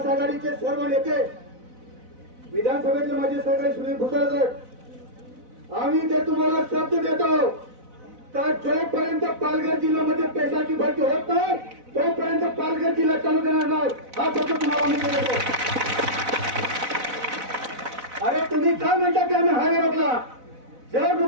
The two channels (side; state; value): left; late; 4.0 ms